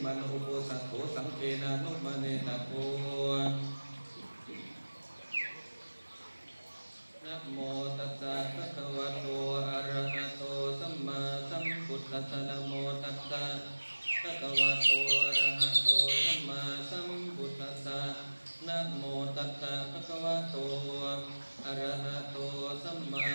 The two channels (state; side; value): inverted; both; correlation -1.00